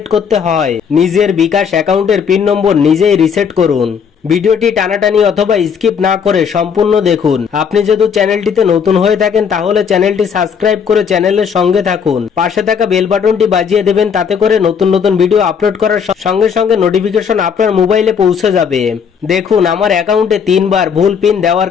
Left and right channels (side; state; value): right; quieter; 6.8 dB